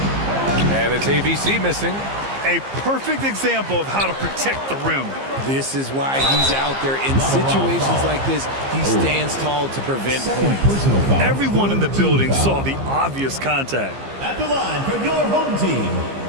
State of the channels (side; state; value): left; late; 15 ms